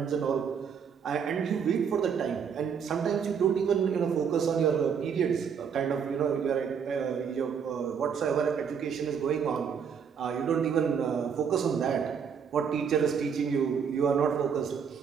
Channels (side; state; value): left; quieter; 7.0 dB